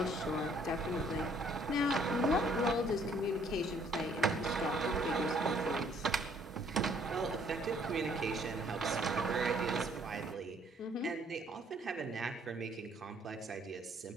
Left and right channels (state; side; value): normal; both; correlation 0.63